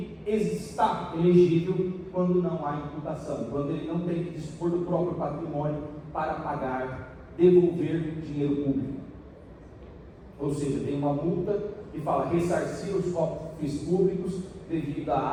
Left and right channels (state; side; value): identical; both; correlation 1.00